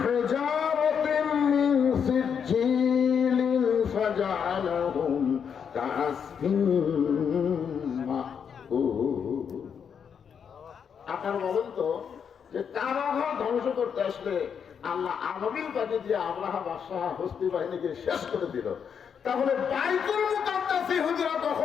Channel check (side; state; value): right; quieter; 7.2 dB